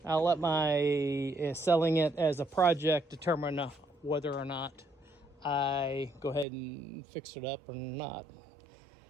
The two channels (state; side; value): drops out; left; at 6.5 s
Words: I'll let my selling it as a project determine whether or not I go ahead and fix it up or not.